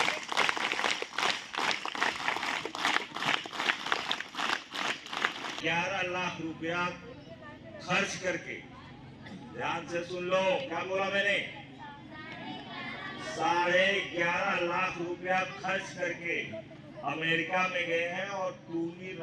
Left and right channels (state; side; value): identical; both; correlation 1.00